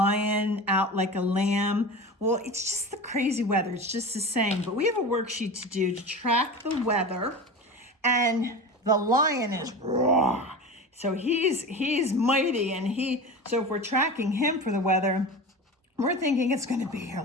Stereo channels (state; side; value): normal; both; correlation 0.30